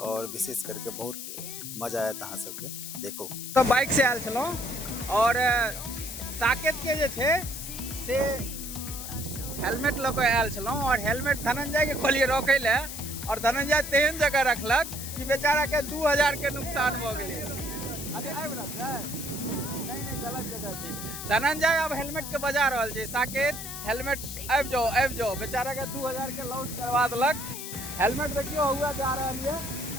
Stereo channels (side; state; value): left; noise; hiss, 8 dB below the sound